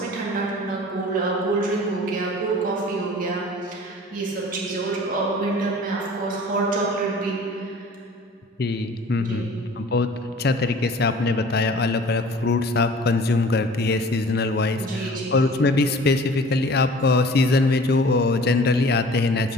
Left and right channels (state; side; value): normal; both; correlation 0.46